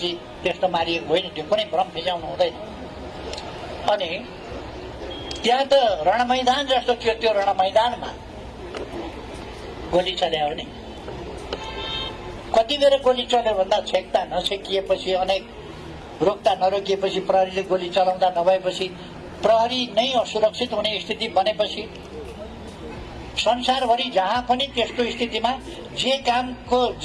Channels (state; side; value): identical; both; correlation 1.00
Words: त्यस्तो मारिएको होइन। त्यो कुनै भ्रम फिजाउनु हुँदैन। अनि त्यहाँ त रणमैदान जस्तो थियो। त्यो रणमैदानमा गोली चल्यो भने कति बेर गोली चल्यो भन्दा छेक्दा नछेकिएपछि, अनेक रोक्दा नरोकिएपछि, प्रहरीले गोली चलाउँदा नभएपछि, प्रहरी नै असुरक्षित हुने स्थिति बनेपछि, संसारभरि जहाँ पनि त्यस्तो स्थितिमा जे कामको,